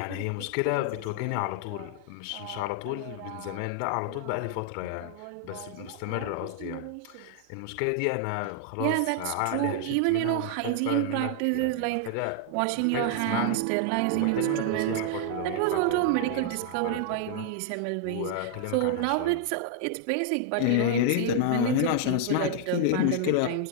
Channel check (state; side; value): different; both; correlation 0.00